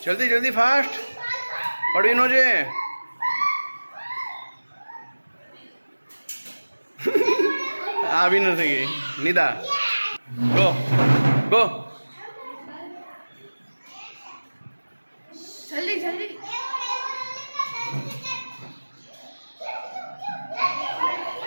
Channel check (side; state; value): both; inverted; correlation -1.00